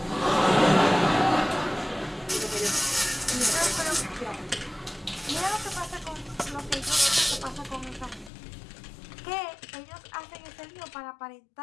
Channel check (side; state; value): right; drops out; at 8.3 s